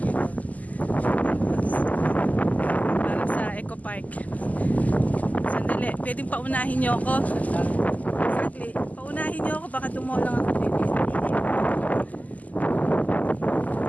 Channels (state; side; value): late; right; 0.077 ms